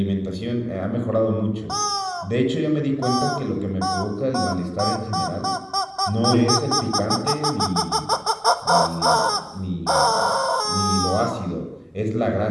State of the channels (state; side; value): identical; both; correlation 1.00